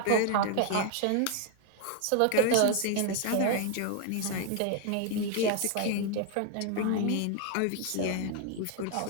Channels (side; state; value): both; different; correlation 0.00